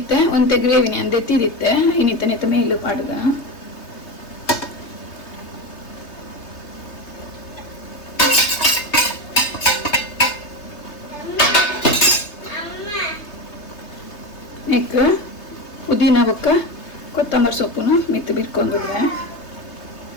ಒಂತೆ ಗ್ರೇವಿನಿ ಅಂದೆ ತಿರಿತ್ತೆ ಇನ್ನಿತ್ತ ಮೇಲು ಪಾಡ್ಗ ನೆಕ್ ಪುದೀನ ಬೊಕ್ಕ ಕೊತ್ತಂಬರಿ ಸೊಪ್ಪುನು ಮಿತ್ತು ಬಿರ್ಕೊಂಡ್ರೆ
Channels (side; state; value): right; late; 3.3 ms